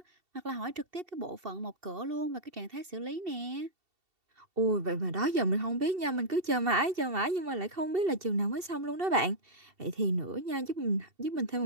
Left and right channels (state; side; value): late; left; 2.7 ms